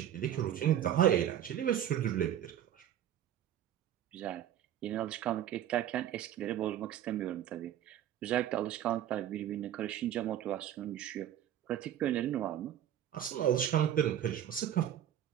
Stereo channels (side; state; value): left; quieter; 11.0 dB